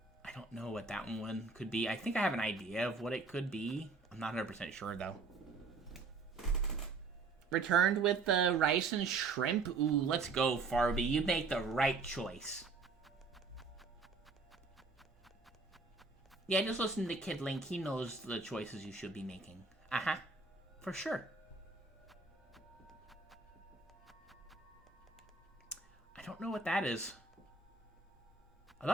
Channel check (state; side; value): quieter; left; 4.2 dB